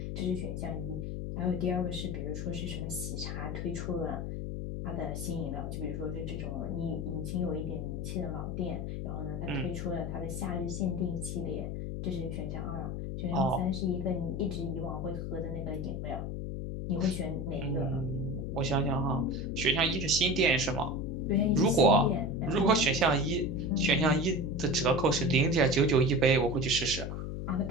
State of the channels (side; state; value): left; noise; hum, 4 dB below the sound